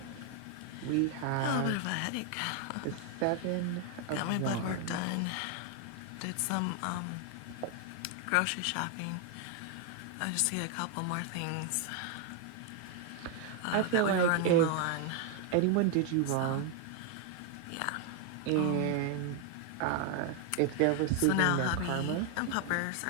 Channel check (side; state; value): both; different; correlation 0.01